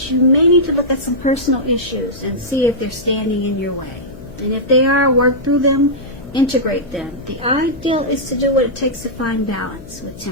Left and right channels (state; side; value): noise; left; hum, 17 dB below the sound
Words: you may need to look at some personal issues and see if they're standing in your way. And if they are, work through them, integrate them. The ideal is to do what it takes to find balance with